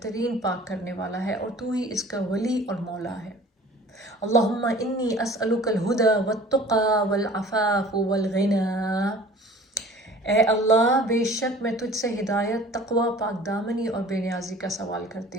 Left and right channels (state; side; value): normal; both; correlation 0.47